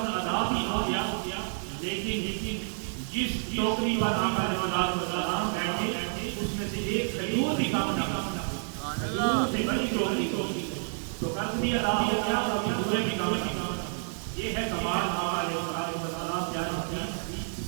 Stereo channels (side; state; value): left; silent; 58 dB below the other